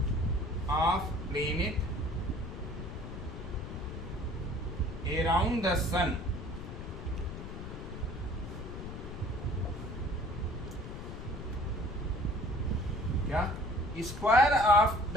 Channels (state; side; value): noise; left; rumble, 8 dB below the sound